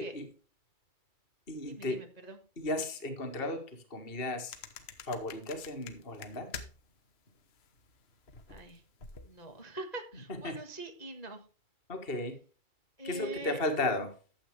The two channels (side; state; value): right; late; 2.7 ms